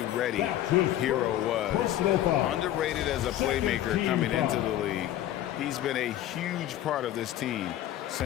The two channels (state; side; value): quieter; right; 12.9 dB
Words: ready Hero was. Underrated as a playmaker coming into the league. He's been a huge part of this team